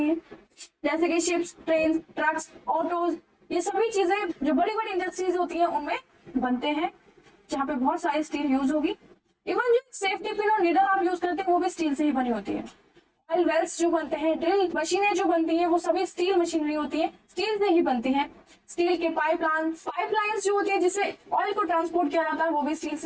है, जैसे कि शिप्स, ट्रेन, ट्रक्स, ऑटोज, ये सभी चीजें जो बड़ी बड़ी इंडस्ट्रीज होती हैं उनमें बनते हैं, जहाँ पे बहुत सारी स्टील यूज होगी। इवन जो सेफ्टी पिन और नीडल आप यूज करते हैं वो भी स्टील से ही बनी होती है। ऑयल वेल्स जो बनते हैं, ड्रिल मशीनें जो बनती हैं, वो सभी स्टील मशीनरी होती है, स्टील से ही बनती है। स्टील के पाइपलाइंस जो होती है जिससे ऑयल को ट्रांसपोर्ट किया जाता है, वो भी स्टील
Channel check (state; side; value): identical; both; correlation 1.00